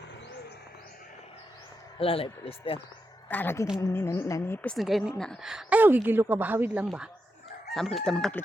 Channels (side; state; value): both; normal; correlation 0.86